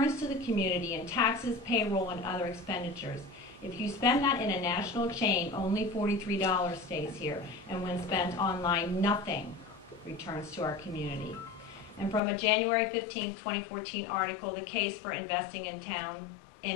to the community in taxes, payroll, and other expenditures. If you spend that in a national chain, only $43 stays here. And when spent online, nothing returns to our community. And from a January 15, 2014 article, The Case for Investing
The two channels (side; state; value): right; drops out; at 12.2 s